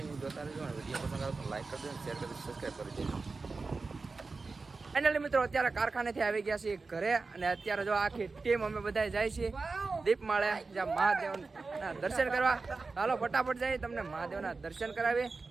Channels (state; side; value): quieter; left; 4.0 dB